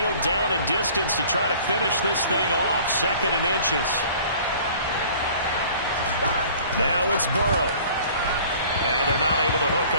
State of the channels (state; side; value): inverted; both; correlation -0.49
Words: down and distance to try to finish this thing off. 2nd and inches. Now it's Burrow. And they're not able to hook